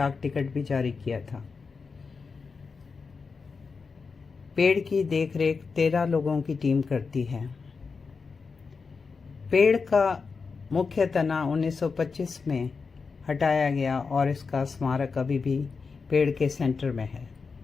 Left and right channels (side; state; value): right; quieter; 4.9 dB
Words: टिकट भी जारी किया था। पेड़ की देखरेख 13 लोगों की टीम करती है। पेड़ का मुख्य तना 1925 में हटाया गया और इसका स्मारक अभी भी पेड़ के सेंटर में है।